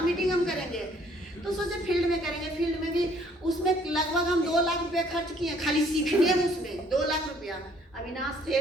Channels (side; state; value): both; normal; correlation 0.61